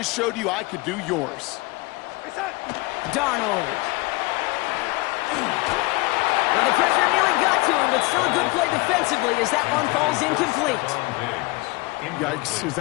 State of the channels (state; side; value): quieter; right; 23.6 dB